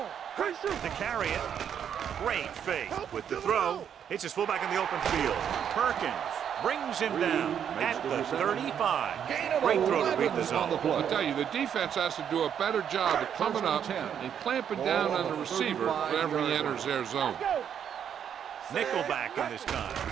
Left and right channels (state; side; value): quieter; left; 8.6 dB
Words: Play shoot. To carry it. Great fake. With the throw. Hits his fullback in the open field. Perkins brings him down at the 35. Great throw to beat the zone. I tell you, the defense has to do a better job of coming up and clamping down on the receiver whenever he enters their zone. Nickelback in this time.